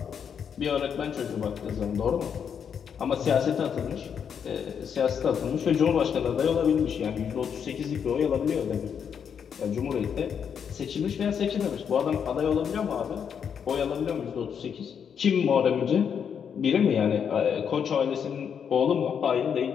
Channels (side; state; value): right; quieter; 7.5 dB